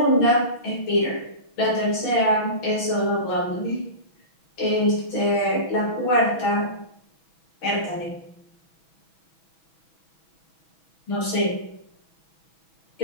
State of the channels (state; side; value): late; right; 6.4 ms